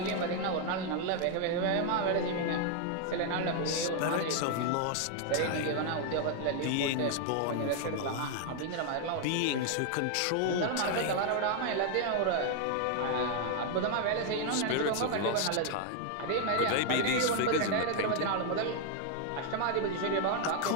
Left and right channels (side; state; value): both; different; correlation 0.00